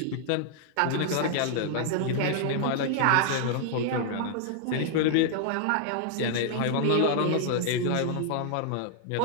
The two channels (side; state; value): both; different; correlation 0.00